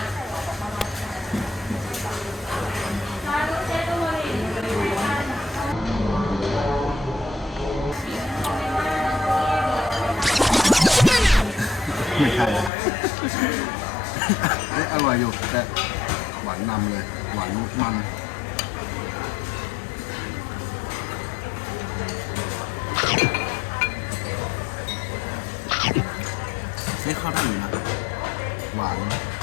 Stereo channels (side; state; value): right; drops out; at 12.7 s